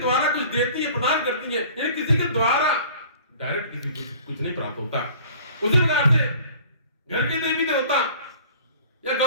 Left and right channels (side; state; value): both; inverted; correlation -0.48